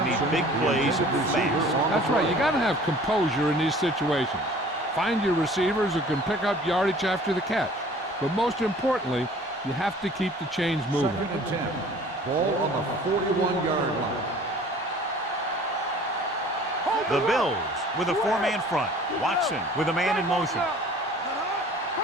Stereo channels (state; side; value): normal; both; correlation 0.49